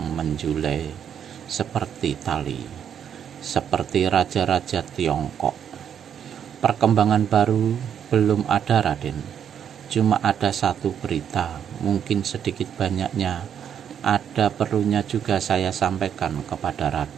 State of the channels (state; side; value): quieter; left; 8.6 dB